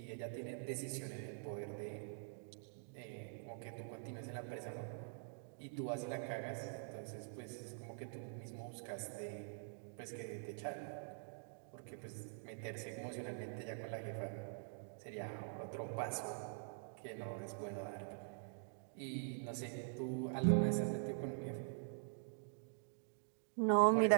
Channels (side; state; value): left; silent; digital silence